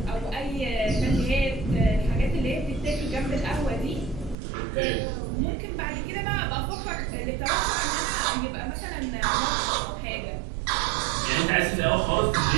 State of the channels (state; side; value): drops out; left; at 4.4 s